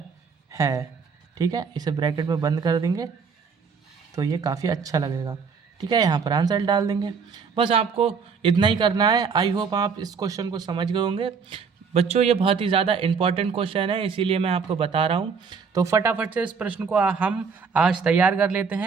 है। ठीक है, इसे ब्रैकेट में बंद कर देंगे, तो ये काफ़ी अच्छा लगेगा। ठीक है, यहाँ पर आंसर डाल देंगे। बस आपको इतना ही करना है। आई होप आप इस क्वेश्चन को समझ गए होंगे बच्चों। ये बहुत ही ज़्यादा इंपॉर्टेंट क्वेश्चन है, इसीलिए मैं आपको बता रहा हूँ। तो फटाफट से इस प्रश्न को हम आज तैयार कर लेते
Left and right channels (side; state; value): left; quieter; 5.7 dB